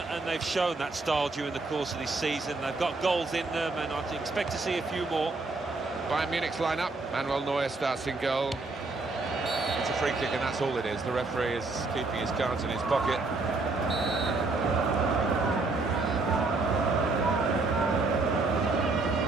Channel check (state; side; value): quieter; left; 3.5 dB